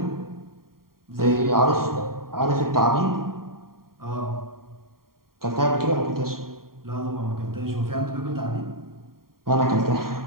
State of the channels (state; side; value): late; left; 0.93 ms